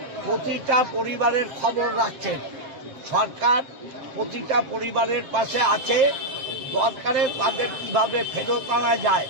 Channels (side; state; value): left; late; 7.5 ms